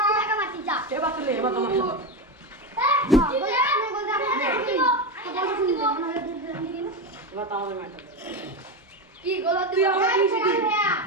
এবার চলে এবার তোমার সাথে। এবার তো আমাদের ম্যাচ আছে। কি গোল তুই আমার নিচে কি?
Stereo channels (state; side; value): normal; both; correlation 0.15